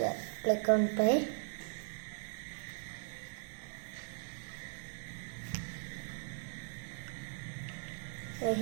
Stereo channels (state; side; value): silent; left; digital silence